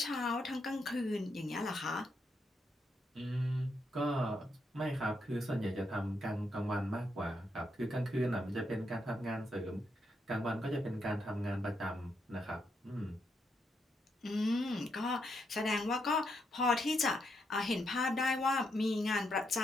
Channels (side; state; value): both; normal; correlation 0.79